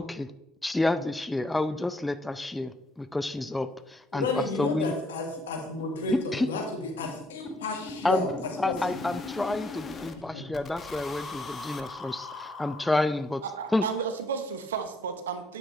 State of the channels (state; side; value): normal; both; correlation 0.69